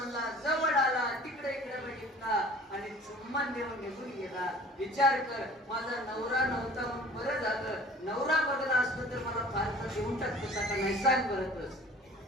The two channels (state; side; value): normal; both; correlation 0.47